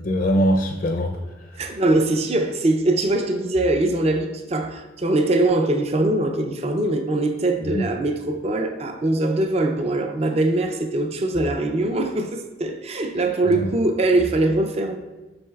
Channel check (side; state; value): both; normal; correlation 0.60